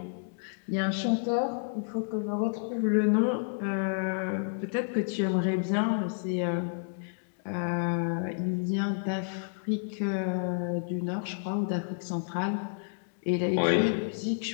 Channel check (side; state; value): right; silent; digital silence